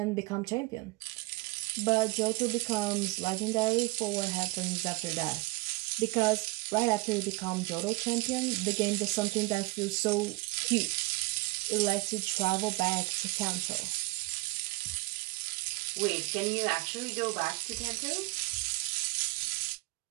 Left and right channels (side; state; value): left; quieter; 24.8 dB